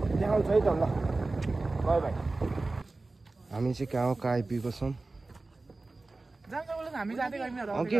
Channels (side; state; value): left; quieter; 3.3 dB